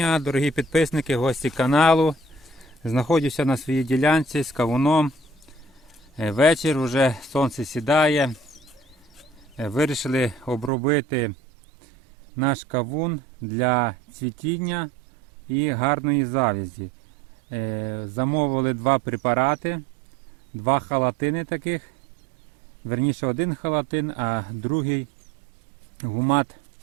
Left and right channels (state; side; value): drops out; left; at 10.7 s